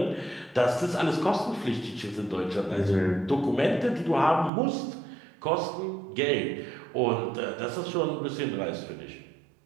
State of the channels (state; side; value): drops out; left; at 4.5 s